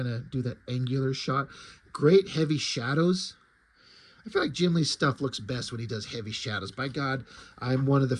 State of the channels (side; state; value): both; identical; correlation 1.00